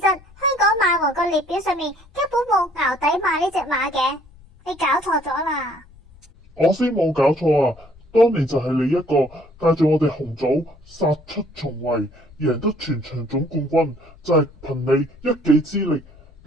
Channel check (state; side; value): noise; left; rumble, 25 dB below the sound